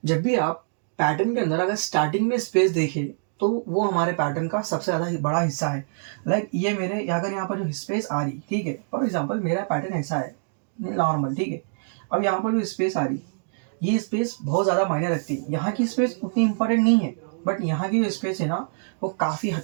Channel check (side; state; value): left; silent; digital silence